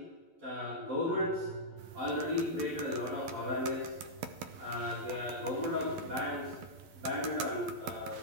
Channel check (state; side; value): late; left; 12 ms